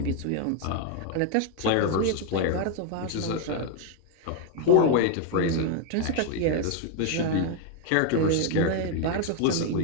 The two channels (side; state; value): both; different; correlation 0.00